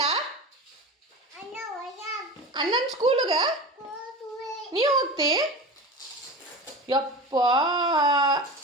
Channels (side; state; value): both; normal; correlation 0.30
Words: ಅಣ್ಣನ ಸ್ಕೂಲ್ಗೆ ನೀವು ಹೋಗ್ತಿ ಯಪ್ಪ